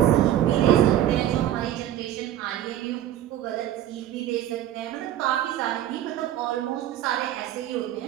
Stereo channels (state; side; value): quieter; left; 12.1 dB